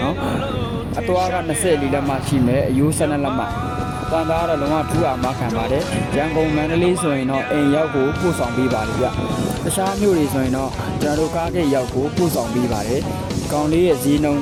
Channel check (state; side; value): identical; both; correlation 1.00